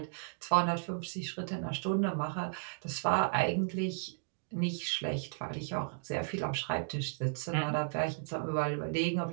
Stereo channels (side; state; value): left; silent; digital silence